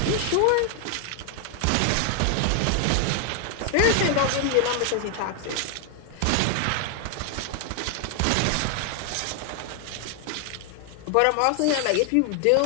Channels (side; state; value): both; different; correlation 0.00